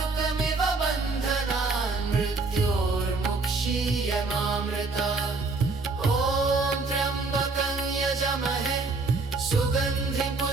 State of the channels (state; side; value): quieter; left; 3.7 dB